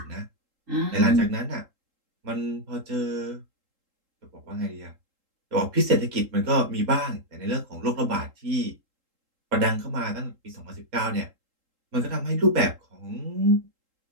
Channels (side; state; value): left; late; 3.8 ms